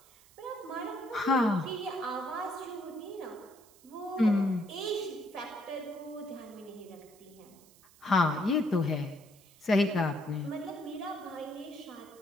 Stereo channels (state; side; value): noise; right; hiss, 26 dB below the sound